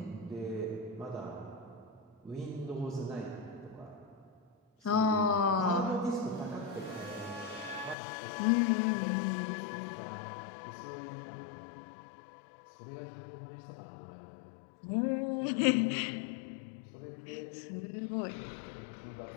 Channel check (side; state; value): right; drops out; at 8.0 s